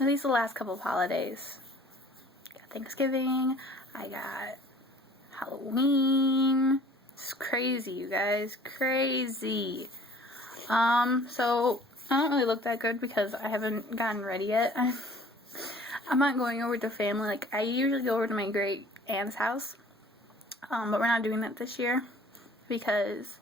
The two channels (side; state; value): both; normal; correlation 0.52